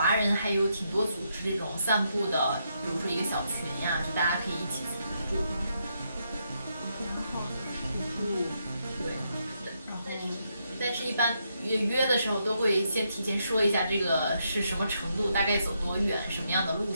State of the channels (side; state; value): both; inverted; correlation -0.79